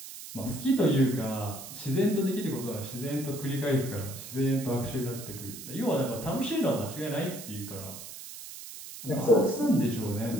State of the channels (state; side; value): noise; right; hiss, 12 dB below the sound